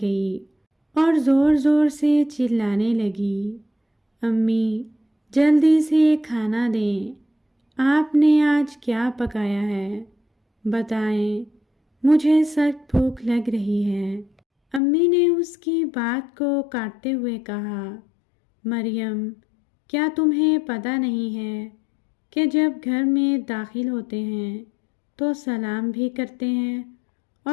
گئی اور زور زور سے چلانے لگی، امی جلدی سے کھانا دیں، آپ نے آج کیا پکایا ہے؟ بتائیں، مجھے سخت بھوک لگ رہی ہے۔ امی نے اس کی بات کو کاٹتے ہوئے کہا، مریم کیا تمہیں پتہ نہیں ہے کہ جب گھر میں داخل ہوتے ہیں تو سلام بھی کرتے ہیں،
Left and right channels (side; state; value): right; drops out; at 14.8 s